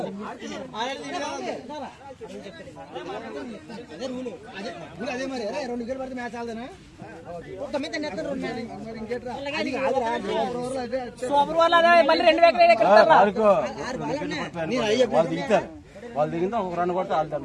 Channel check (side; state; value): both; identical; correlation 1.00